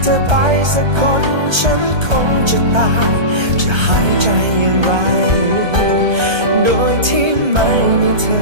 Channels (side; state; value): left; late; 1.2 ms